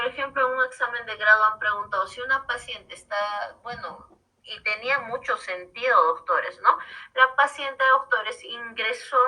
ejemplo, en un examen de grado han preguntado si una paciente está, bueno, y tenía mucho sentido, doctores, ¿no? La paciente, doctores,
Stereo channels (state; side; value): identical; both; correlation 1.00